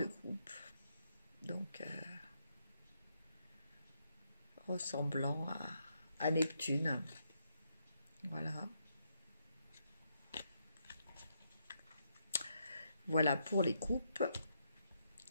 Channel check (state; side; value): inverted; both; correlation -0.78